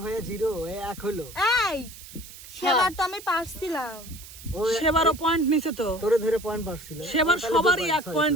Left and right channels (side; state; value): right; noise; hiss, 16 dB below the sound